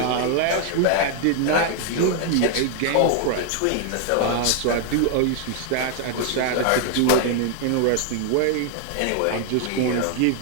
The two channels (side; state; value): both; different; correlation 0.00